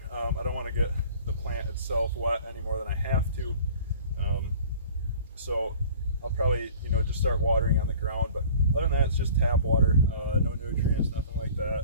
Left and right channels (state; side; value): inverted; both; correlation -0.47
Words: I don't want to get the plant itself wet any more than I have to. So I'll probably just start watering on the ground. But other than that, it's just tap water, no nutrients, nothing like that.